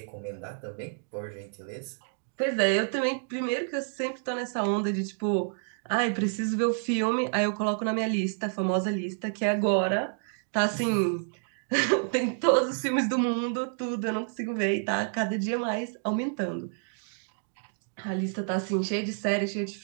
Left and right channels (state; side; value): silent; left; digital silence